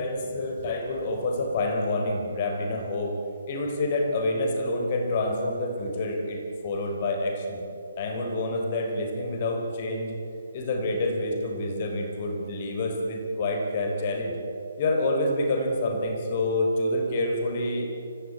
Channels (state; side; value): inverted; both; correlation -0.67